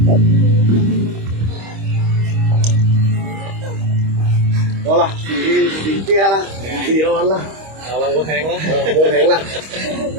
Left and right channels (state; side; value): late; left; 25 ms